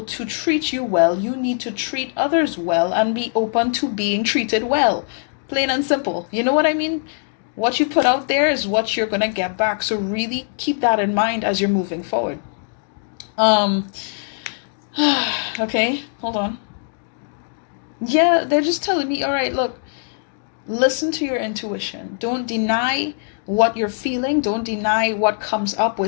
to treat you well, you need to treat others well and be open to being treated well. Plain and simple. You know what I mean? What you put out there is what you're going to get back. So really keep that in mind as you're moving forward. Okay, hold on. Yeah, they're just telling me, all right, look, listen to your intuition. Don't deny what you're feeling. Don't deny what comes up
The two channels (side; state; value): right; silent; digital silence